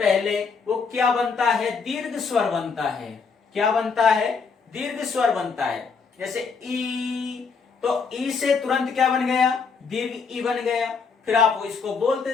वो क्या बनता है, दीर्घ स्वर बनता है। क्या बनता है, दीर्घ स्वर बनता है। जैसे ई, तो ई से तुरंत क्या बन गया, दीर्घ ई बन गया। फिर आप इसको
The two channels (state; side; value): quieter; right; 5.3 dB